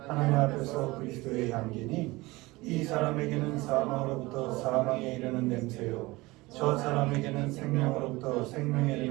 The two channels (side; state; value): left; quieter; 21.4 dB